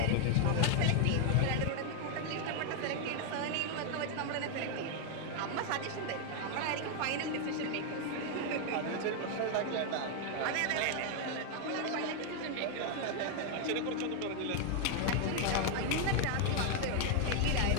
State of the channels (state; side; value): different; both; correlation 0.00